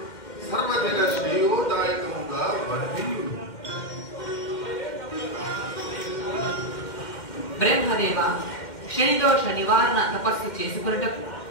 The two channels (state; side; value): late; right; 2.1 ms